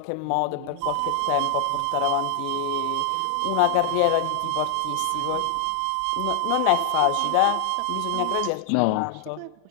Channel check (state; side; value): different; both; correlation 0.00